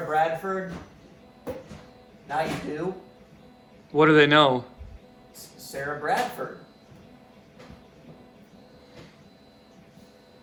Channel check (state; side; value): identical; both; correlation 1.00